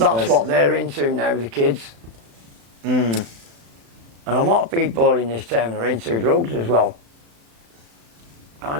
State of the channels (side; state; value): left; late; 35 ms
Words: what they're into now, the kids. And a lot of people in this town are into drugs as well. I